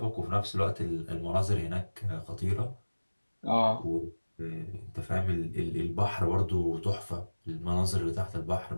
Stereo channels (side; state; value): both; inverted; correlation -1.00